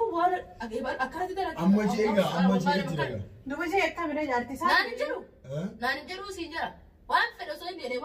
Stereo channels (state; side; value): identical; both; correlation 1.00